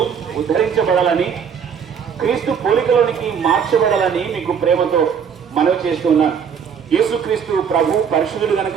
ఉద్ధరించబడాలని, క్రీస్తు పోలికలోనికి మార్చబడాలని మీకు ప్రేమతో మనవి చేస్తున్నాను. యేసుక్రీస్తు ప్రభు పరిశుద్ధుడు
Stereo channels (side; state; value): left; quieter; 7.1 dB